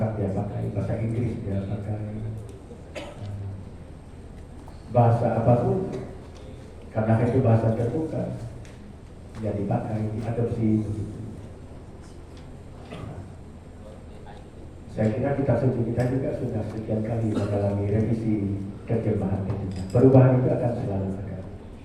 dia pakai, bahasa Inggris dia pakai, bahasa apapun, karena itu bahasa terbuka, dia dipakai, diadopsi. Saya kira kitab suci kita juga sudah sekian kali mengalami revisi terjemahan. Perubahan itu akan selalu ada.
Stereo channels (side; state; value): both; identical; correlation 1.00